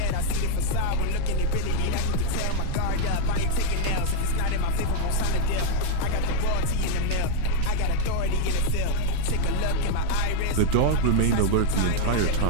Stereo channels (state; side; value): different; both; correlation 0.00